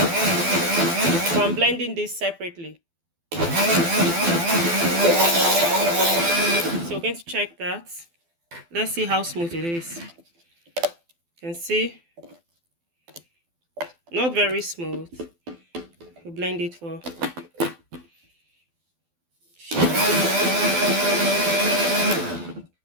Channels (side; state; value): left; late; 12 ms